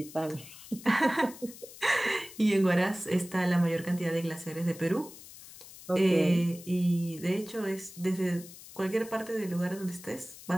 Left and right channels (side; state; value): left; noise; hiss, 17 dB below the sound